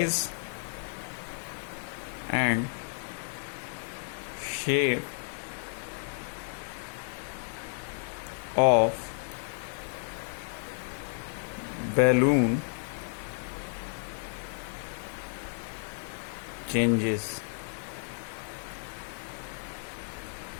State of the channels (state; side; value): silent; right; digital silence